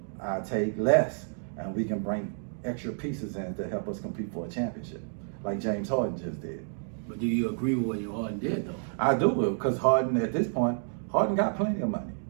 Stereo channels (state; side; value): silent; left; digital silence